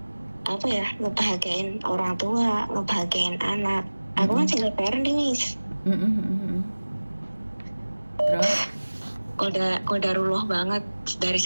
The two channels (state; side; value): inverted; both; correlation -1.00